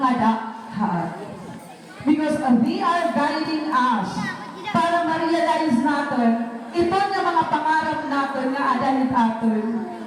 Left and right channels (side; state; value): both; identical; correlation 1.00